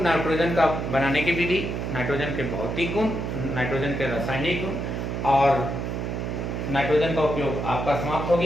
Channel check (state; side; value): noise; right; hum, 3 dB below the sound